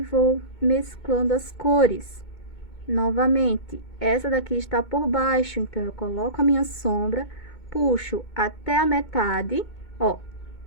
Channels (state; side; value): late; right; 2.2 ms